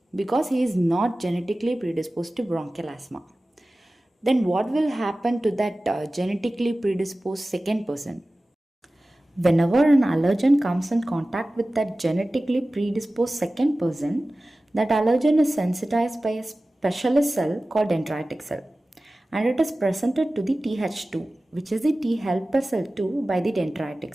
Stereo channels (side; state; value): both; normal; correlation 0.96